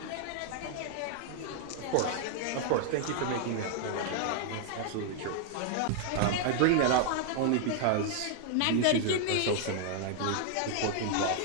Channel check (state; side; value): different; both; correlation 0.00